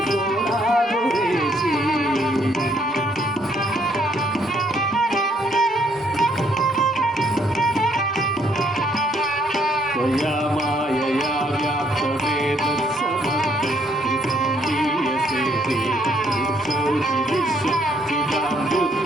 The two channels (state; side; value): normal; both; correlation 0.69